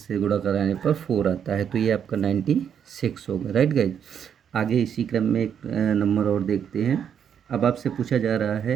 गुणा कराने पर 4 आता है। तो ये आपका 96 होगा, राइट गाइज। आगे इसी क्रम में एक नंबर और देखते हैं। अब आपसे पूछा जा रहा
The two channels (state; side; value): quieter; left; 8.3 dB